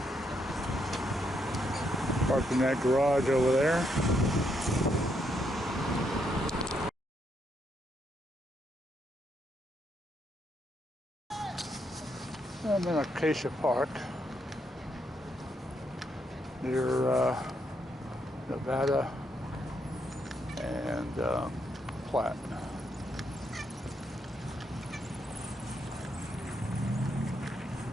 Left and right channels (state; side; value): normal; both; correlation 0.77